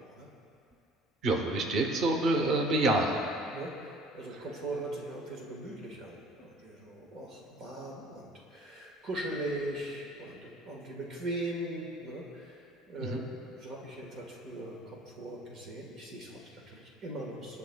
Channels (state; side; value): normal; both; correlation 0.51